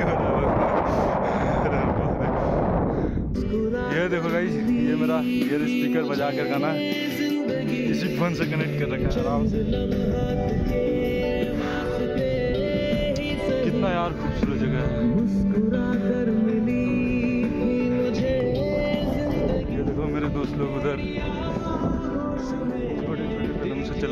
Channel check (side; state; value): both; identical; correlation 1.00